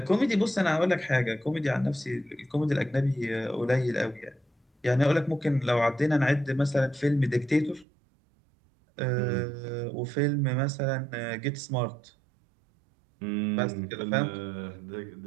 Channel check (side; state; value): left; drops out; at 7.9 s